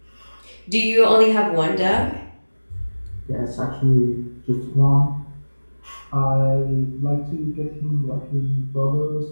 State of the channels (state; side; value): inverted; both; correlation -1.00